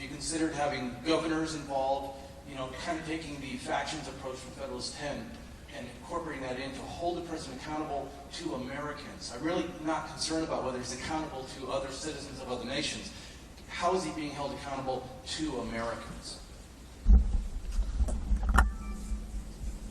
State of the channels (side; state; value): both; identical; correlation 1.00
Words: you considered having governors involved, kind of taking the factions approach from Federalist 10 and incorporating that in to hold the president accountable to Americans. I'm really not concerned about whether he's accountable to other citizens of other nations. How is he being held accountable to Americans?